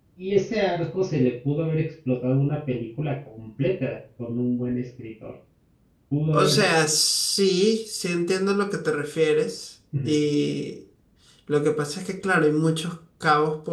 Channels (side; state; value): both; identical; correlation 1.00